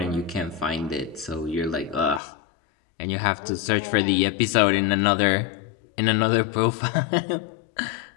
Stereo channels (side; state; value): right; drops out; at 2.2 s